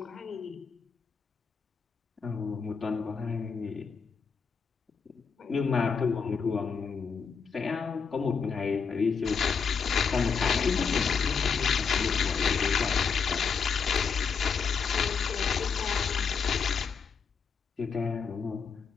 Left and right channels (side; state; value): right; quieter; 5.9 dB